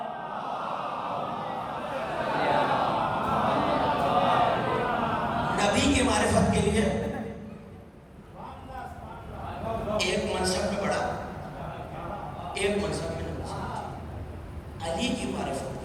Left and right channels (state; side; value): identical; both; correlation 1.00